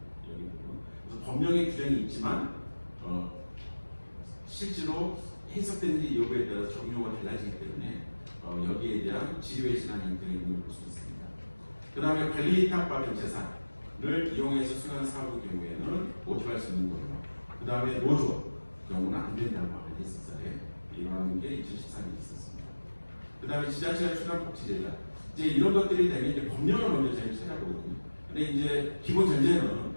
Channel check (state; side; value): inverted; both; correlation -1.00